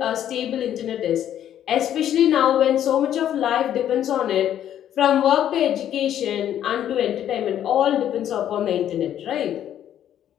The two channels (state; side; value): quieter; right; 10.7 dB